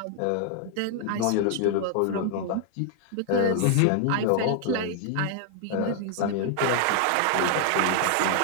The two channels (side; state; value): both; different; correlation 0.00